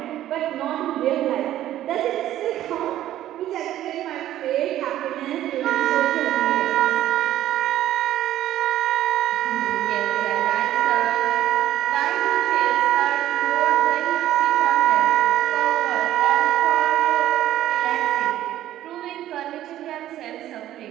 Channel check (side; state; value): left; quieter; 13.0 dB